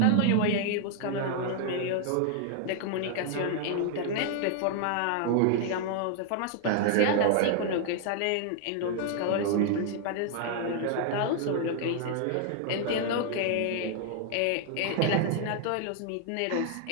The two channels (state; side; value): different; both; correlation 0.00